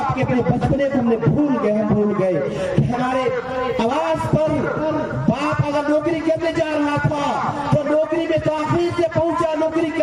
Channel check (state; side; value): identical; both; correlation 1.00